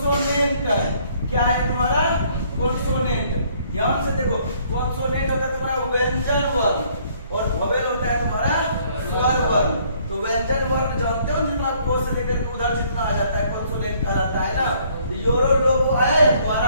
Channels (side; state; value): both; inverted; correlation -0.63